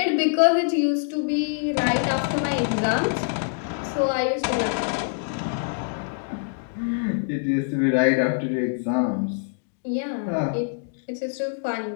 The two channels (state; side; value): silent; right; digital silence